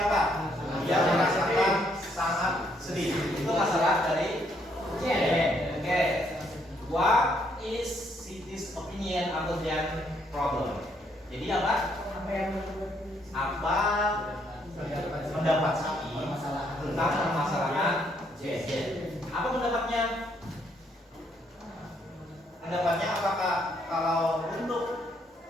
Dia merasakan sangat sedih. Itu masalah dari Jen. Oke. What is Siti's opinion about Jen problem? Jadi apa? Apa pendapat Siti tentang permasalahan Jen? Apa pendapatnya? Pendapatnya apakah kalau untuk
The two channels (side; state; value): both; normal; correlation 0.71